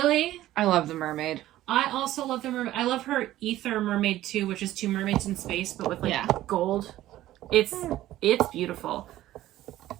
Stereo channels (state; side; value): quieter; left; 14.5 dB